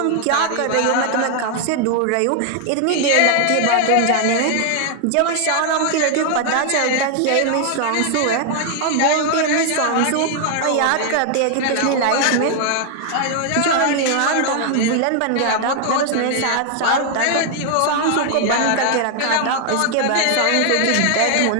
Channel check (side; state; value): both; different; correlation 0.00